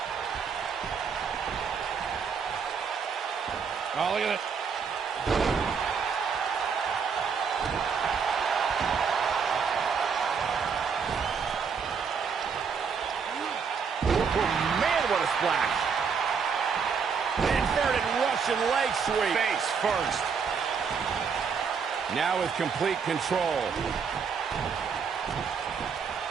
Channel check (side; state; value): left; quieter; 6.1 dB